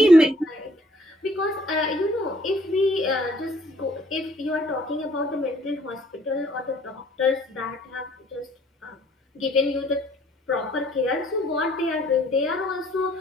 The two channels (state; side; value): normal; both; correlation 0.61